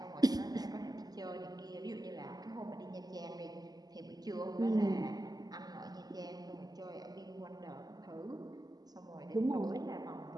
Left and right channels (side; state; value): left; late; 0.19 ms